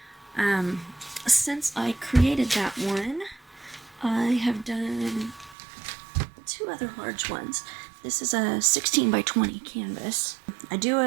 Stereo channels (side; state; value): left; drops out; at 5.6 s